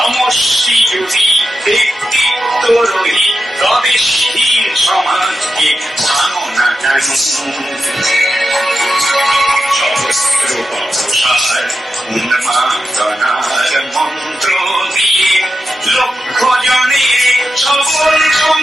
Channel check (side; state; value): both; normal; correlation 0.89